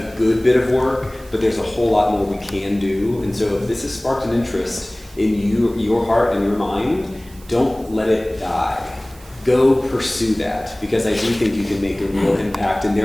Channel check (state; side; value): noise; right; hiss, 24 dB below the sound